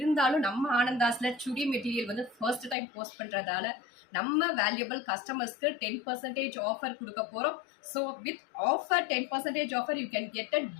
நம்ம ஆனந்தாஸ்ல சுடி மெட்டீரியல் வந்து ஃபர்ஸ்ட் டைம் போஸ்ட் பண்றதால நம்ம வேல்யூபிள் கஸ்டமர்ஸ்க்கு 10% ஆஃபர் கொடுக்க போறோம். So with offer 10% offer you can get it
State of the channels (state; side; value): drops out; right; at 2.8 s